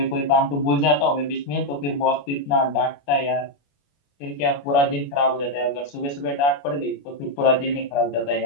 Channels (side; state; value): right; late; 28 ms